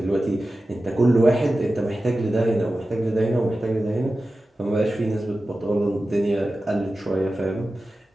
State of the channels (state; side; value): normal; both; correlation 0.94